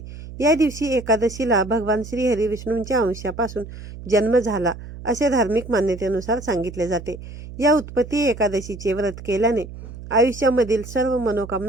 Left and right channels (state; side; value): noise; right; hum, 13 dB below the sound